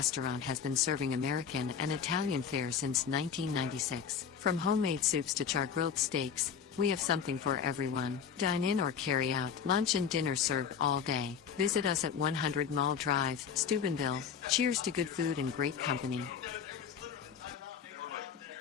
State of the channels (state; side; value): quieter; right; 7.2 dB